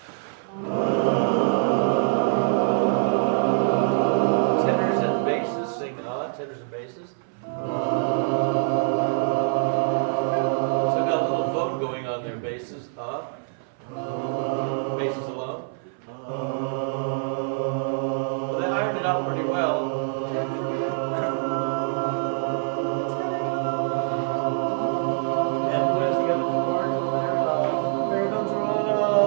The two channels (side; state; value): left; silent; 60 dB below the other